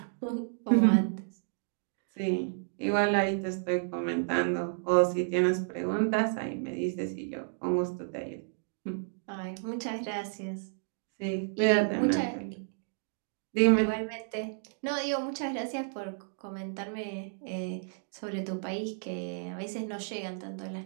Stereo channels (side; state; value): left; silent; digital silence